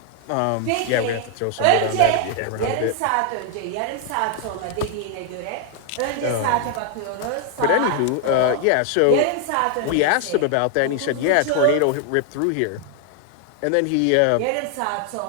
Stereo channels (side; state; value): both; different; correlation 0.00